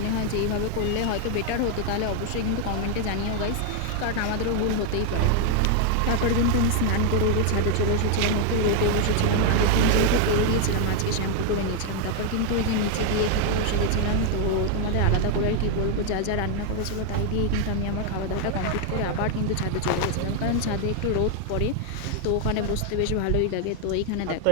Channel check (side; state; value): both; different; correlation 0.01